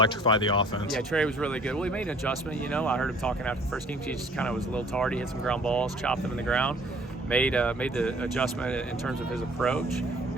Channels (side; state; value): both; normal; correlation 0.54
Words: the offense. Yeah, Trey was really good. Well, he made an adjustment. I heard him talking after the first game. He just kind of was a little tardy, hit some ground balls, chopped them in the ground. Made the adjustment in terms of his approach,